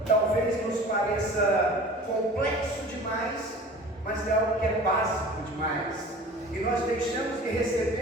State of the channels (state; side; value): normal; both; correlation 0.42